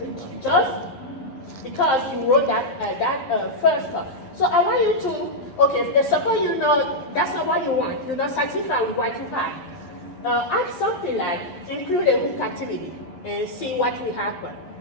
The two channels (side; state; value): right; late; 11 ms